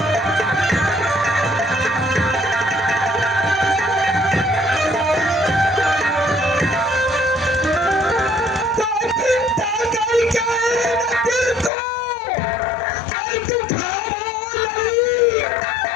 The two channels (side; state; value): right; drops out; at 11.7 s